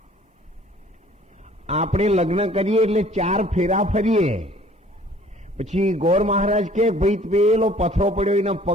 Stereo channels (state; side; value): normal; both; correlation 0.54